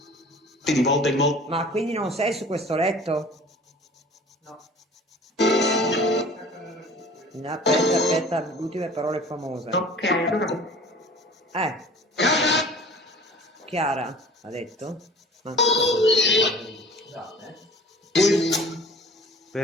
Di volta in volta. Ma quindi non sei su questo letto? No. Aspetta, ultime parole famose. Ok, allora. Chiara ha detto?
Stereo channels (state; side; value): normal; both; correlation 0.45